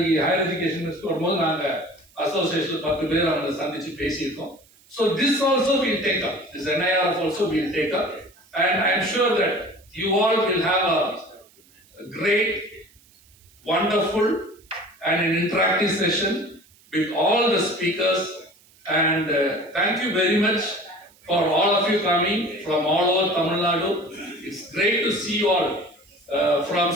ஹையர் எஜுகேஷன் மினிஸ்டர் வரும்போது நாங்கள் அசோசியேஷன் 10 பேர் அவங்களை சந்திச்சு பேசியிருக்கோம். So this also will take up, this NIRF also will take up, and I am sure that you all will have a great, wonderful and an interactive session with all the speakers. And thank you very much for all of you coming from all over Tamil Nadu. It's great to see you all. From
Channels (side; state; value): right; noise; hiss, 29 dB below the sound